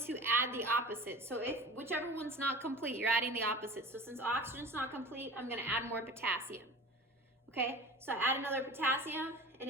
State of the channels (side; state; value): both; normal; correlation 0.37